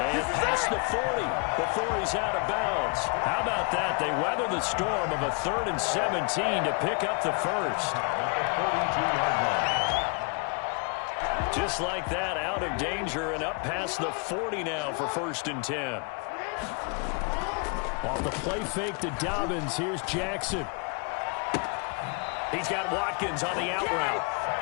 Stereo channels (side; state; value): right; quieter; 34.2 dB